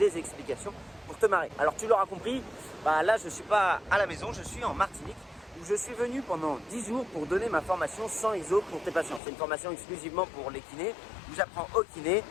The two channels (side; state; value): right; drops out; at 9.2 s